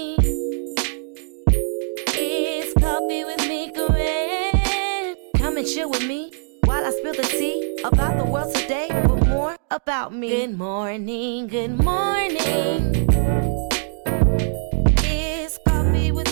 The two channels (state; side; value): silent; left; digital silence